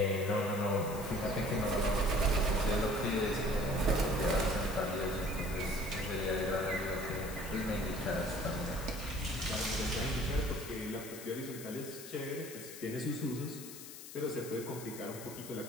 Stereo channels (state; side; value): noise; left; hiss, 13 dB below the sound